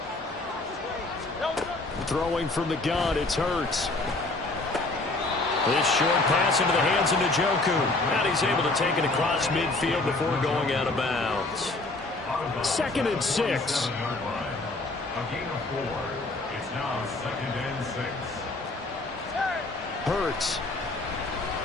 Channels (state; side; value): quieter; right; 3.1 dB